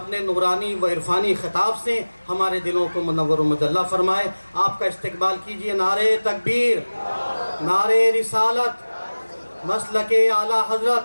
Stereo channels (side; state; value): both; inverted; correlation -1.00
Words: نورانی و عرفانی خطاب سے ہمارے دلوں کو منور و مجلہ فرمائے۔ آپ کا استقبال کیجئے۔ نعرہ تکبیر، نعرہ رسالت، مسلک اعلیٰ